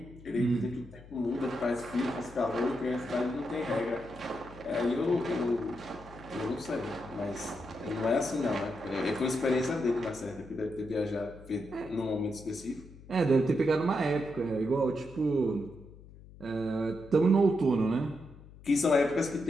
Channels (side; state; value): left; noise; hum, 19 dB below the sound